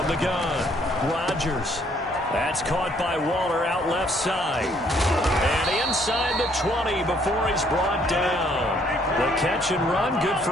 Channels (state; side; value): normal; both; correlation 0.65